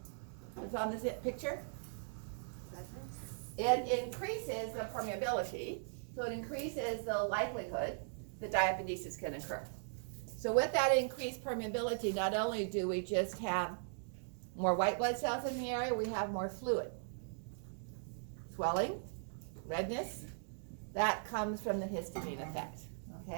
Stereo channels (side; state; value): left; silent; digital silence